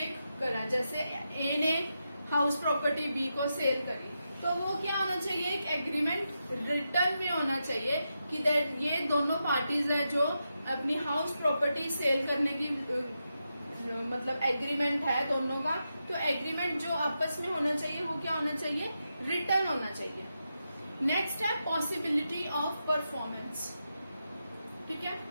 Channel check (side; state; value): both; inverted; correlation -0.87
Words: करा। जैसे ए ने हाउस प्रॉपर्टी बी को सेल करी तो वो क्या होना चाहिए, एक एग्रीमेंट रिटर्न में होना चाहिए कि दैट ये दोनों पार्टीज है जो अपनी हाउस प्रॉपर्टी सेल करने की मतलब एग्रीमेंट है दोनों का, तो एग्रीमेंट जो आपस में होना चाहिए वो क्या होना चाहिए, रिटर्न होना चाहिए। नेक्स्ट है पॉसिबिलिटी ऑफ परफॉर्मेंस। ठीक है,